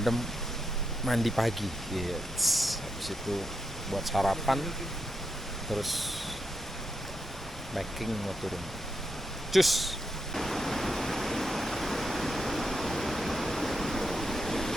mandi pagi. Yes. Habis itu buat sarapan, terus packing mau turun. Cus.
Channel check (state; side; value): normal; both; correlation 0.83